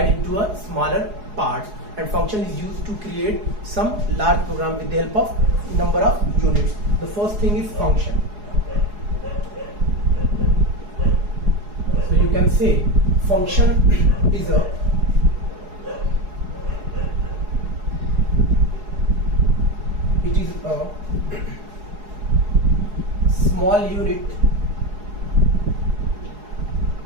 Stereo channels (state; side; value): late; left; 4.8 ms